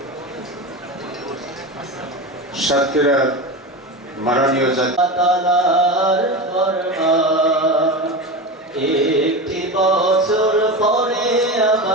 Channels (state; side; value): normal; both; correlation 0.24